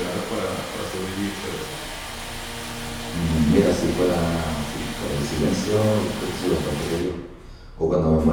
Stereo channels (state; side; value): identical; both; correlation 1.00